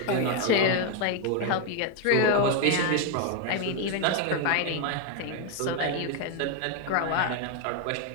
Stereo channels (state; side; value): different; both; correlation 0.01